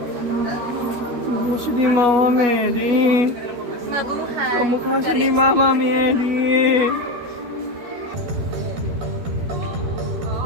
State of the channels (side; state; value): left; late; 12 ms